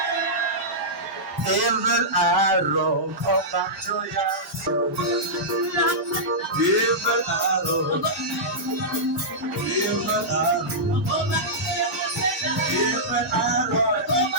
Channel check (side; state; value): left; late; 1.6 ms